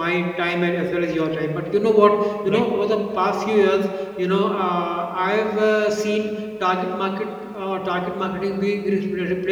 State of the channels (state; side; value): identical; both; correlation 1.00